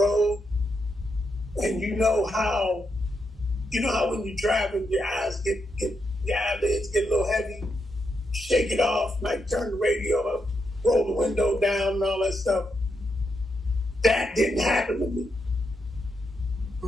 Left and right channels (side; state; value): both; normal; correlation 0.83